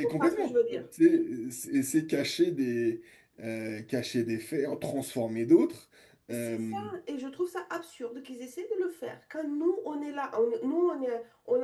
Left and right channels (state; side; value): identical; both; correlation 1.00